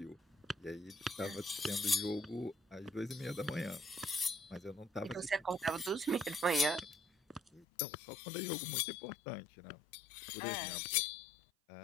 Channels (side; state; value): right; drops out; at 7.7 s